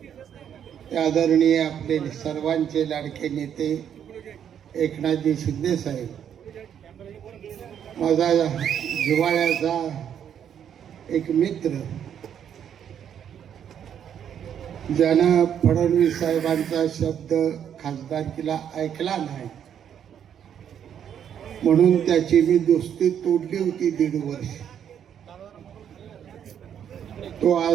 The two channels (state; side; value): quieter; left; 9.0 dB